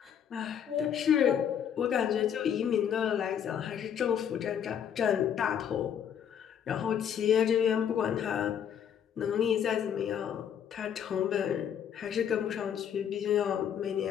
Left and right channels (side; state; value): right; quieter; 8.8 dB